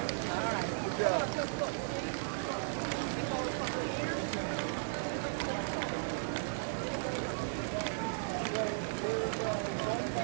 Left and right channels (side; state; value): left; silent; 54 dB below the other